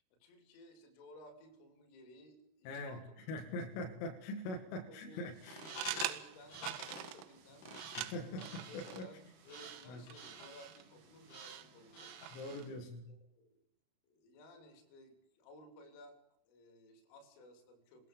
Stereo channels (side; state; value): right; late; 31 ms